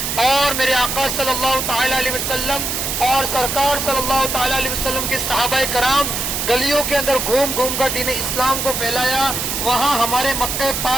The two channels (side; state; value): right; noise; hiss, 2 dB below the sound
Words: اور میرے آقا صلی اللہ تعالی علیہ وسلم اور سرکار صلی اللہ تعالی علیہ وسلم کے صحابہ کرام گلیوں کے اندر گھوم گھوم کر دین اسلام کو پھیلایا، وہاں ہمارے مکہ